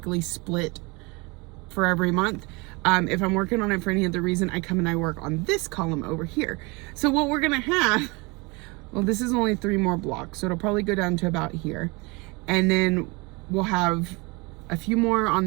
split for every month, if I'm working on it for any other reason, I come and I work on this column over here. So what we're gonna have, well, this is only 3 more blocks, so it'll probably go down to about here, and then we'll have a few more on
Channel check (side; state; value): left; quieter; 27.0 dB